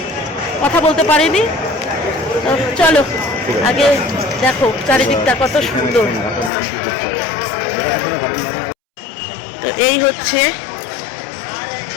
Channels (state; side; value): drops out; right; at 6.5 s